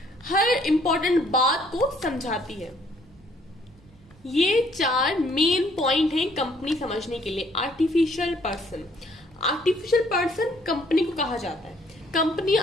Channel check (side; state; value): right; noise; rumble, 27 dB below the sound